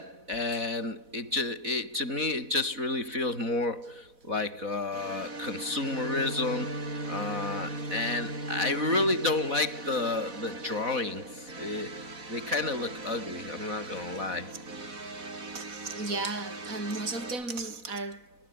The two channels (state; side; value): late; left; 4.1 ms